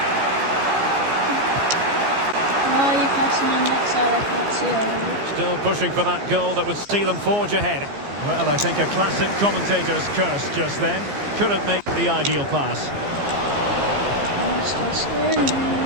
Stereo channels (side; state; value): left; late; 15 ms